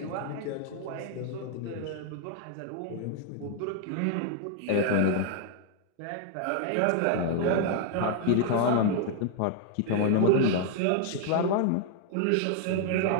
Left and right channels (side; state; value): both; different; correlation 0.00